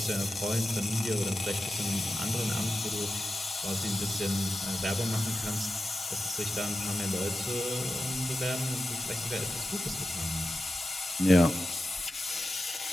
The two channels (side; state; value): both; normal; correlation 0.92